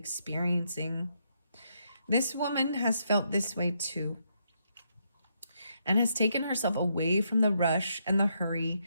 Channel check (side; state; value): both; inverted; correlation -0.77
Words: This woman has felt this way too, and has taken herself away from the rush and the hurry